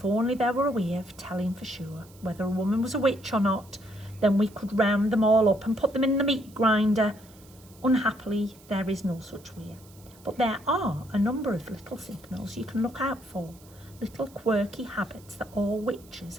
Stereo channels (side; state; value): right; noise; hiss, 25 dB below the sound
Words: only there were a way of telling for sure whether a woman was a witch or not, then we could round them all up and put them in the meat grinder. Unhappily, there is no such way. But there are a number of little signals you can look out for, little quirky habits that all witches